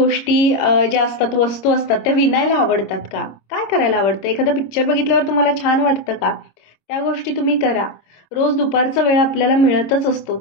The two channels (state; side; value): late; right; 26 ms